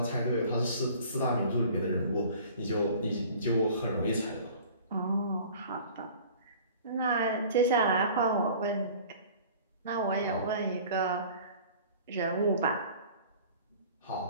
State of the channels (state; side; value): inverted; both; correlation -0.46